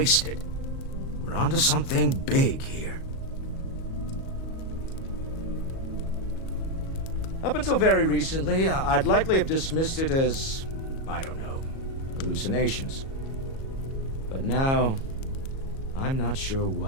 We're onto something big here. Up until very recently, I'd likely have dismissed it as, I don't know, hallucinations. But now, I'm not sure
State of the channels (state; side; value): late; right; 37 ms